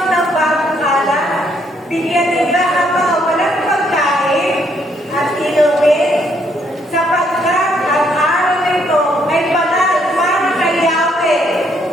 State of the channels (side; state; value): both; normal; correlation 0.70